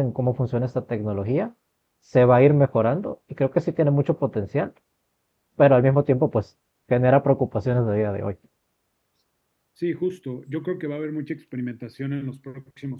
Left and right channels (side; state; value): both; identical; correlation 1.00